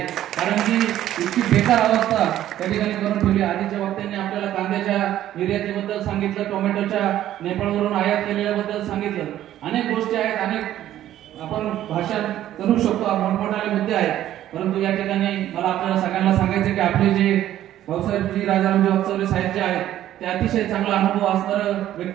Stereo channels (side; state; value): left; quieter; 12.6 dB